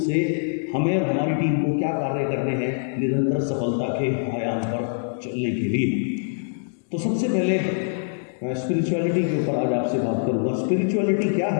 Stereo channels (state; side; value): silent; right; digital silence